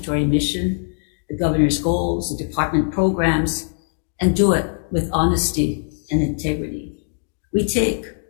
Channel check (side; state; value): right; silent; digital silence